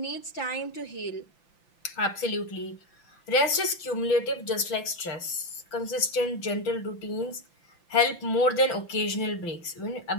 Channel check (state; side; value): late; right; 5.9 ms